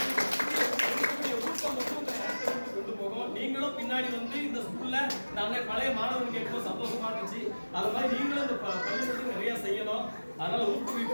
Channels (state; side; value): inverted; both; correlation -1.00